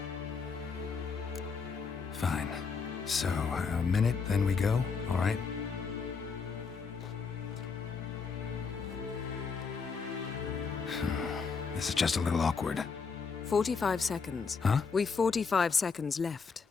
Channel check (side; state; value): right; quieter; 5.4 dB